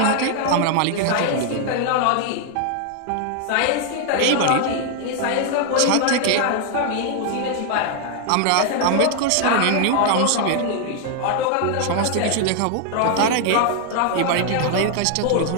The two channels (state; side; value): different; both; correlation 0.00